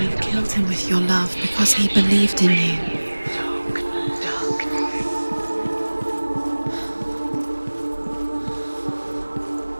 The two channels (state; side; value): inverted; both; correlation -1.00